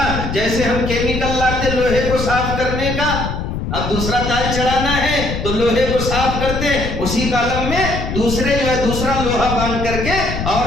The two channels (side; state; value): left; noise; rumble, 4 dB below the sound